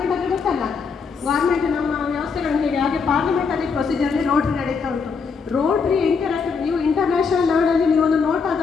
ಅಂದರೆ ಗೊತ್ತಲ್ಲ, ಗೌರ್ಮೆಂಟ್ ನಮ್ಮ ವ್ಯವಸ್ಥೆಗಳು ಹೇಗೆ ಹಾಗೆ ಪಾರ್ಲಿಮೆಂಟರಿ ಪ್ರೊಸೀಜರಲ್ಲಿ ರೋಟ್ರಿ ನಡೀತಾ ಉಂಟು. ರೋಟ್ರಿ ಇಂಟರಾಕ್ಟಿವ್, ನೀವು ಇಂಟರ್ನ್ಯಾಷನಲ್ ಲೆವೆಲಲ್ಲಿ ನೀವು ಒಂದು ನೋಟ್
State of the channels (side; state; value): right; quieter; 5.3 dB